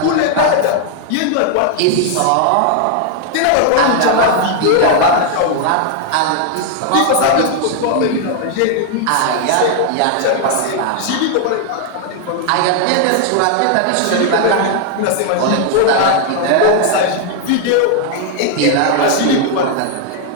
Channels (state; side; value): different; both; correlation 0.00